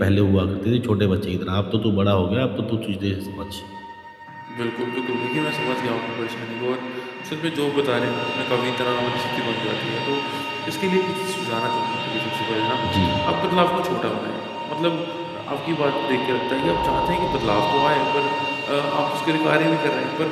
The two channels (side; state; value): both; identical; correlation 1.00